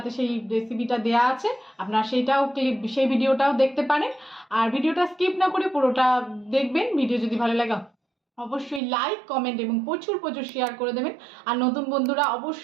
সেই রেসিপিটা দেওয়া আছে, আপনারা সেই ভিডিওটাও দেখতে পারেন। আর ভিডিওটা স্কিপ না করে পুরোটা দেখবেন। ভিডিও যদি ভালো লাগে অবশ্যই লাইক, কমেন্ট এবং প্রচুর শেয়ার করে দেবেন। আর নতুন বন্ধুরা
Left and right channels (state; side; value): drops out; left; at 8.8 s